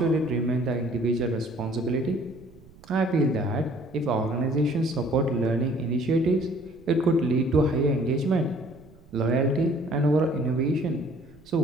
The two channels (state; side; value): noise; right; rumble, 24 dB below the sound